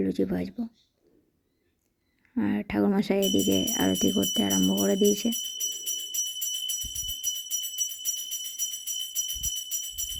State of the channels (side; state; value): both; identical; correlation 1.00